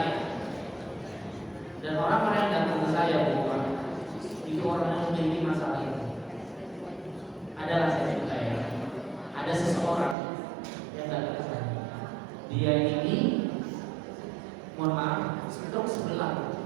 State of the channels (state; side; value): drops out; left; at 10.2 s